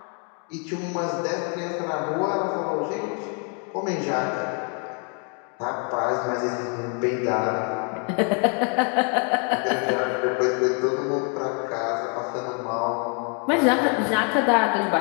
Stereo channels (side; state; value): right; quieter; 39.0 dB